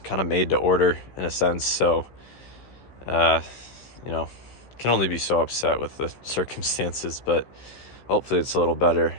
kind of made to order in a sense. So can only be so upset with the circumstances, but hopefully it's a little better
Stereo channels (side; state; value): right; late; 16 ms